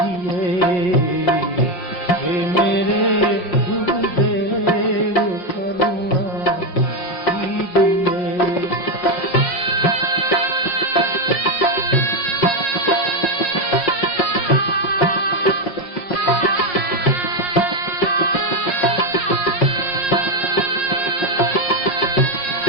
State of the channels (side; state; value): right; late; 5.3 ms